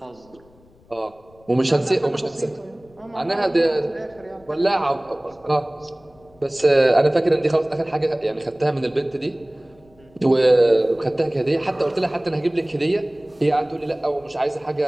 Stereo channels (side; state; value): left; noise; rumble, 29 dB below the sound